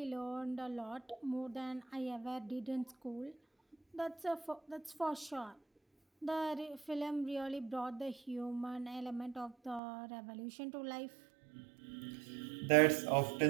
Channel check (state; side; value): drops out; left; at 9.8 s